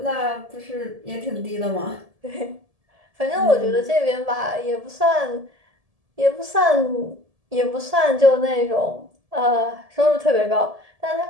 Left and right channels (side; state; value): left; late; 1.7 ms